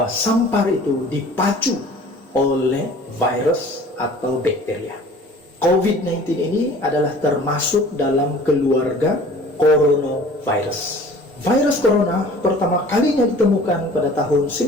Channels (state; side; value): normal; both; correlation 0.47